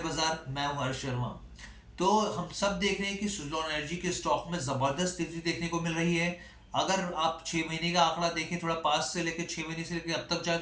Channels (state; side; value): identical; both; correlation 1.00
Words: मैं हूं हर्ष शर्मा। तो हम सब देख रहे हैं कि सुज़लॉन एनर्जी के स्टॉक में जबरदस्त तेजी देखने को मिल रही है। अगर आप 6 महीने का आंकड़ा देखें, थोड़ा पास से लेकर 6 महीने से लेकर अब तक जाए